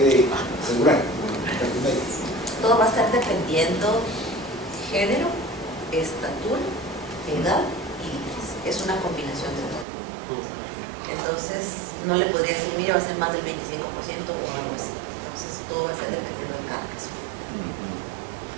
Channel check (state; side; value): drops out; left; at 9.9 s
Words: asegurar? Todo va a estar dependiendo género, estatura, edad y límites. Es una combinación de todo. Entonces, no le podría decir, mire, va a ser más del 25% o algo así. Entonces, todo va a ser dependiendo de cada caso.